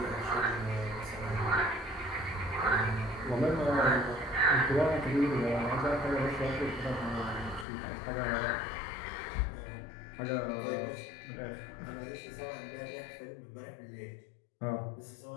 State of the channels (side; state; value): right; drops out; at 7.7 s